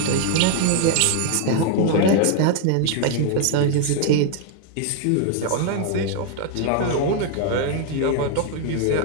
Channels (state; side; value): different; both; correlation 0.00